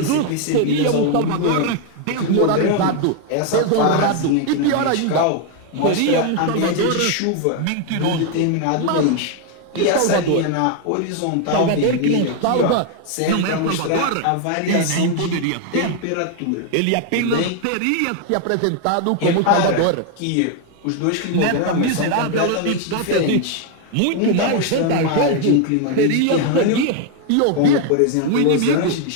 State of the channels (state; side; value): different; both; correlation 0.00